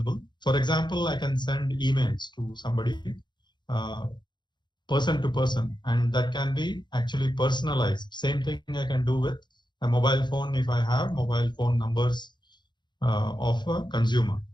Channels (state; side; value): late; right; 0.22 ms